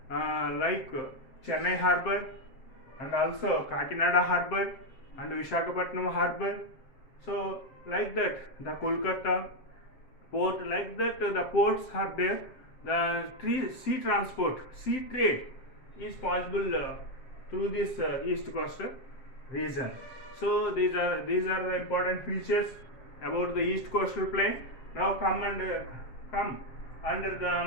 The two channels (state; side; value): late; right; 7.6 ms